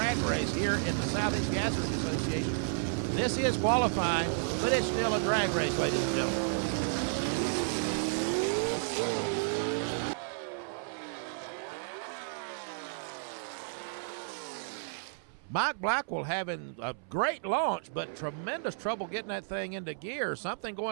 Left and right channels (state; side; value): silent; left; 56 dB below the other